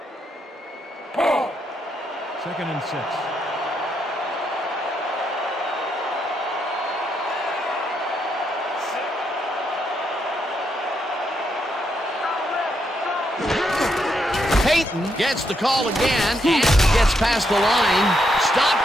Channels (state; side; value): normal; both; correlation 0.79